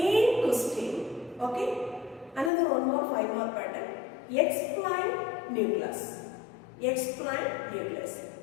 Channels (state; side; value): drops out; right; at 2.5 s